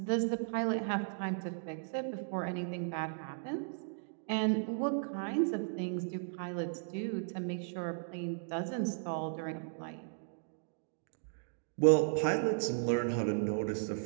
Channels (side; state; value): left; silent; digital silence